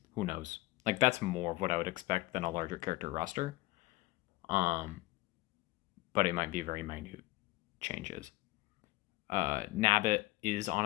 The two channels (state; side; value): quieter; right; 19.9 dB